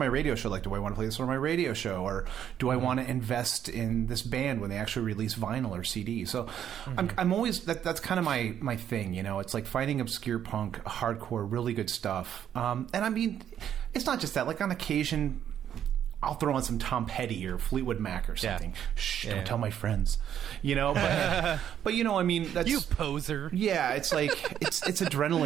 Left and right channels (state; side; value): quieter; left; 9.7 dB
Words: radio show. Like, do I want to play this on my radio show, or do I want to invest in this band when they actually release vinyl or CD? So I'm always, that's kind of my thing, it's like finding obscure punk, hardcore, really good stuff. And I mean, it's not just that, like on occasion, I'll throw on some Tom Petty or Fleetwood Mac or something. Yeah. Shh, don't tell my friends. But I mean, that's, you poser. Yeah, it's like it's